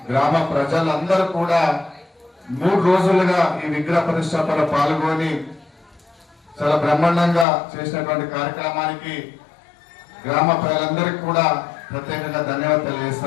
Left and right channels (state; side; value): drops out; right; at 7.5 s